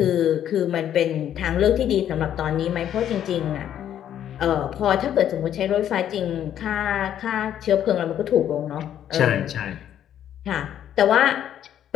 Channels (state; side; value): quieter; right; 10.4 dB